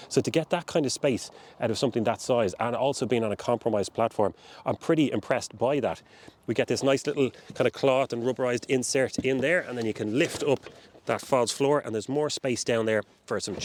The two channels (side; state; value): both; identical; correlation 1.00